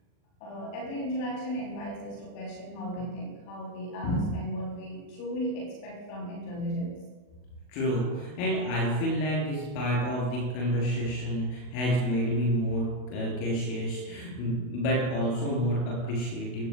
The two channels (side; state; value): right; late; 40 ms